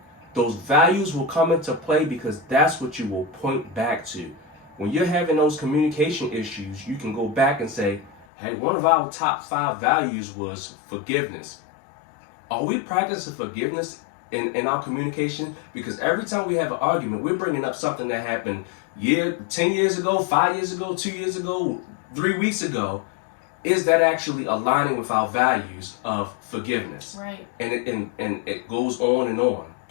those values will come into play because that's what you will point back to. When you're having those communication issues, you can go back and say, hey, one of our top 5 values was forgiveness. Are we practicing forgiveness in our communication? Because every time we have an argument, we're bringing up something that happened 10 years ago, 5 years ago, 2 years ago, 3 weeks ago. Is that actually aligning with our values of forgiveness? Right. And it goes on and on.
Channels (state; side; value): drops out; right; at 8.2 s